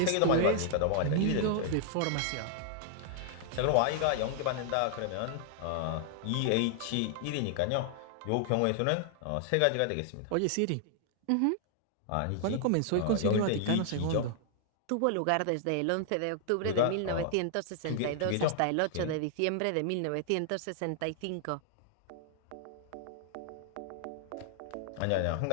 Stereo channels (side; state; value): both; different; correlation 0.00